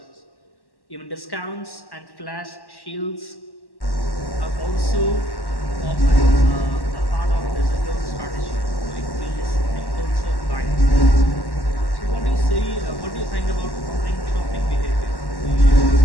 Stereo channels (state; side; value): late; right; 1.1 ms